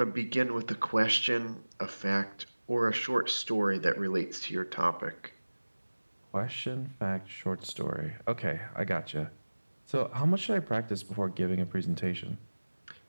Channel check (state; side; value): inverted; both; correlation -1.00